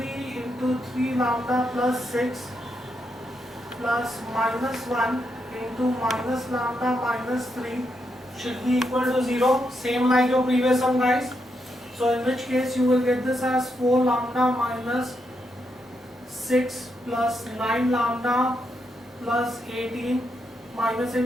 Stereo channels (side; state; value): both; normal; correlation 0.82